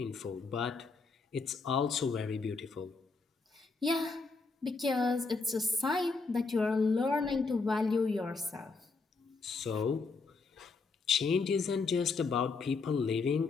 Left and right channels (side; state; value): right; quieter; 4.2 dB